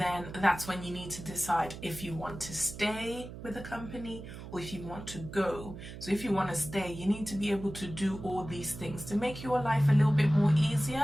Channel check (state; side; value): noise; right; hum, 12 dB below the sound